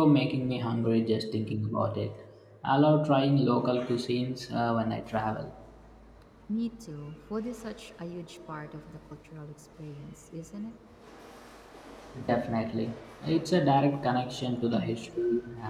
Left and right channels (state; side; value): identical; both; correlation 1.00